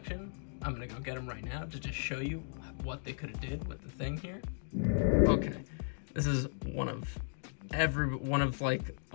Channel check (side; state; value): right; silent; digital silence